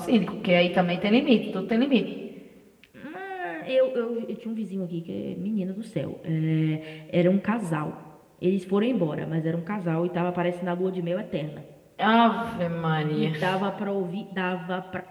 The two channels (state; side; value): identical; both; correlation 1.00